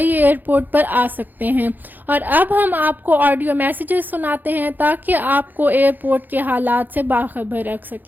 एयरपोर्ट पर आ सकते हैं। और अब हम आपको ऑडियो मैसेजेस सुनाते हैं ताकि आपको एयरपोर्ट के हालात से बाखबर रख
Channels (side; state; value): left; late; 0.087 ms